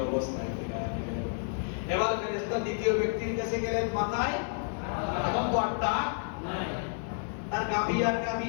অবস্থায় ফিরিয়ে দিবেন। এবার ফেরেশতা দ্বিতীয় ব্যক্তির কাছে গেলেন, মাথায় এখন তো আটটা নাই, তার গাভী আর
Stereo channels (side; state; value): right; silent; 57 dB below the other